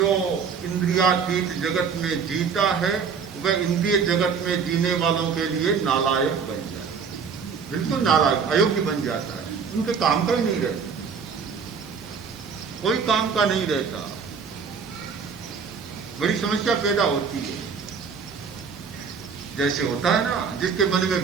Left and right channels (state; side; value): quieter; left; 6.1 dB